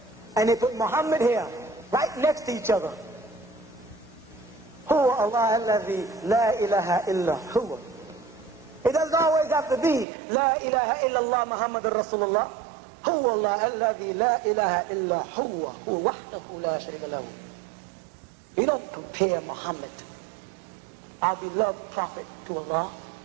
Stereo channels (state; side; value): drops out; left; at 10.1 s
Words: and they put Muhammad here, right next to each other. Huwa Allah alladhi la ilaha illa huwa. It doesn't always have to be La ilaha illallah Muhammadur Rasulullah. Huwa Allah alladhi la ilaha illa huwa. Huwa wahdahu la sharika lahu. You don't compare Muhammad, our beloved prophet, to Allah